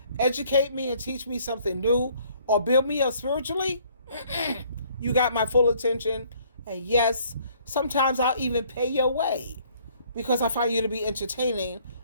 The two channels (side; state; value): both; inverted; correlation -0.61